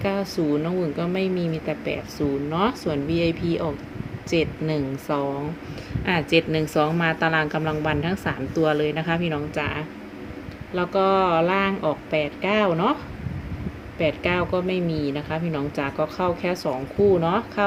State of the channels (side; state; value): both; identical; correlation 1.00